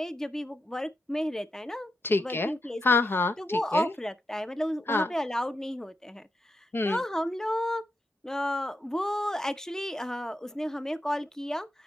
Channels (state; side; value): normal; both; correlation 0.85